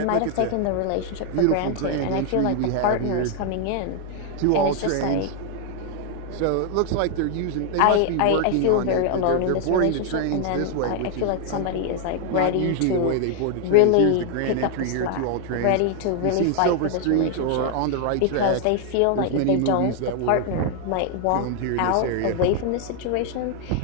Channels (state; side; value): different; both; correlation 0.00